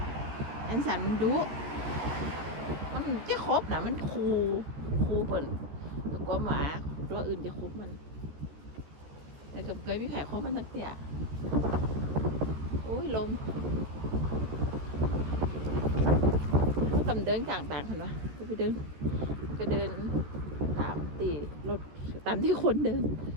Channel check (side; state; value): left; late; 14 ms